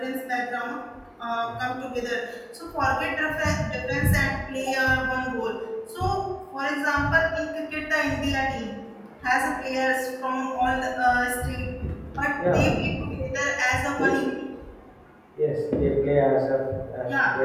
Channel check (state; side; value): identical; both; correlation 1.00